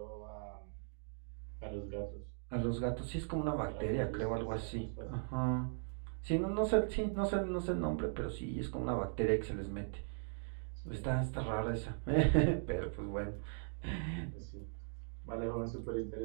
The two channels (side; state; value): left; silent; digital silence